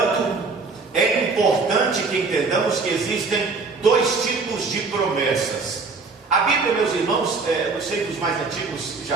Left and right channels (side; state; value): left; quieter; 4.2 dB